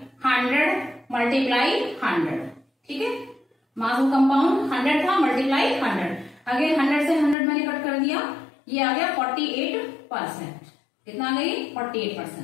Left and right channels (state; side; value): drops out; right; at 7.4 s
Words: 100 मल्टीप्लाई 100, ठीक है। मास ऑफ कंपाउंड 100 था मल्टीप्लाई 100। अगेन 100 से 100 मैंने कट कर दिया, ये आ गया 48%। कितना आ गई